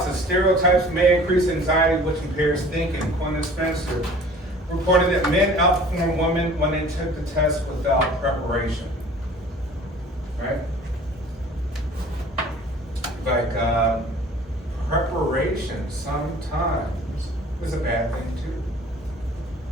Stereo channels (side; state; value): both; normal; correlation 0.48